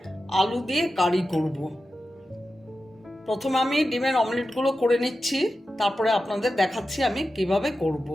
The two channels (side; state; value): both; normal; correlation 0.92